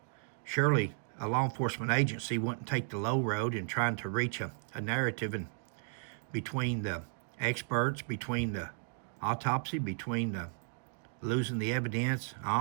Surely a law enforcement agency wouldn't take the low road in trying to reach a narrative and between the experts, between the autopsy, between the losing the evidence,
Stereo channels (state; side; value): silent; left; digital silence